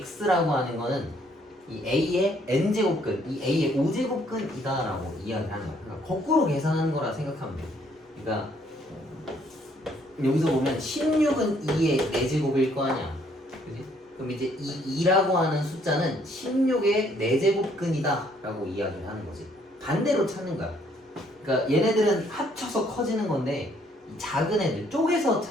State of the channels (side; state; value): both; normal; correlation 0.66